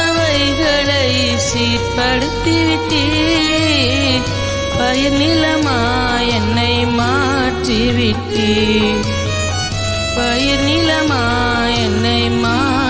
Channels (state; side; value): identical; both; correlation 1.00